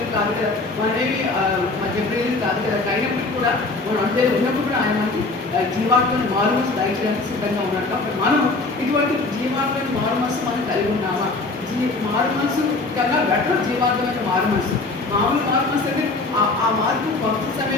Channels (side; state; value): right; quieter; 3.4 dB